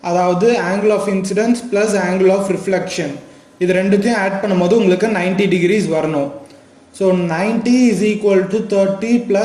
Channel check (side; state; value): both; identical; correlation 1.00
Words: அதாவது angle of incidence plus angle of reflection, இது ரெண்டுத்தையும் ஆட் பண்ணும்போது உங்களுக்கு 90 டிகிரிஸ் வரணும். So 90 is equal to 30